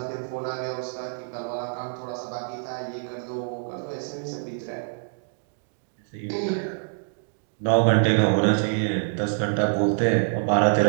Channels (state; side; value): silent; left; digital silence